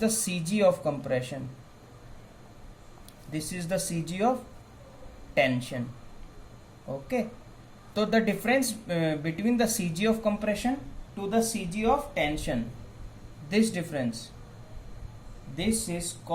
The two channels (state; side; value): identical; both; correlation 1.00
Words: CG of compression, this is the CG of tension. Okay, so the difference between the CG of compression to the CG of tension, this difference, this is